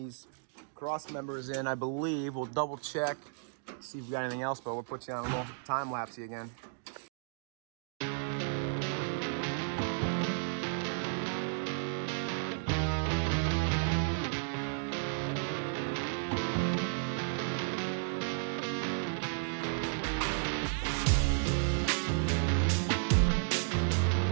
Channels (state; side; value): silent; left; digital silence